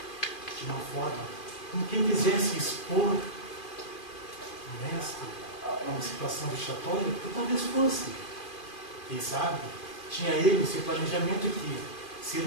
de uma forma como quem quisesse expor o mestre a uma situação vexatória, porque talvez fosse. Quem sabe, tinha ele esse planejamento que, se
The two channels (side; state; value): right; late; 2.4 ms